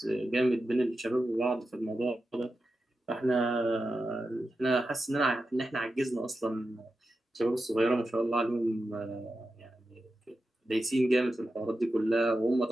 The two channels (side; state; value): both; normal; correlation 0.90